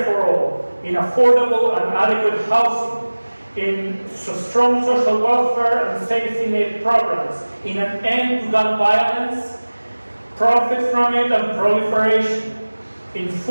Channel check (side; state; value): both; inverted; correlation -1.00